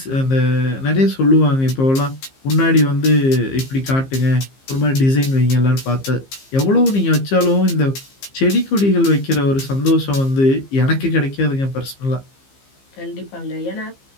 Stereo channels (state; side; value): late; right; 15 ms